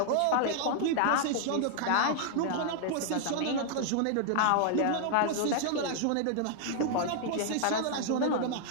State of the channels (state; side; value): different; both; correlation 0.00